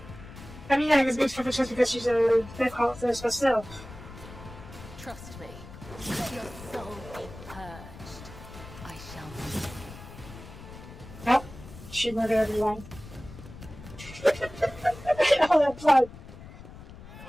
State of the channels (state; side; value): noise; left; rumble, 15 dB below the sound